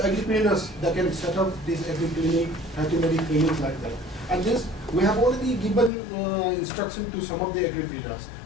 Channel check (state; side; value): drops out; right; at 5.9 s